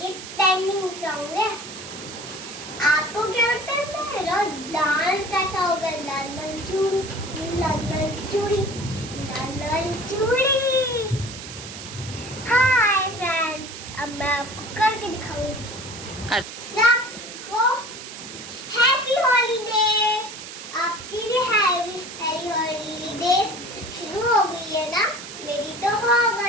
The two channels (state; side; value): noise; right; hiss, 12 dB below the sound